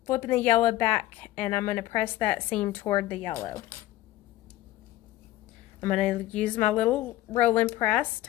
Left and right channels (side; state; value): right; quieter; 15.6 dB